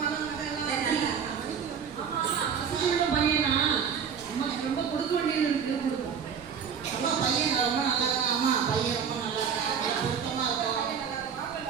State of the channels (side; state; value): left; quieter; 7.1 dB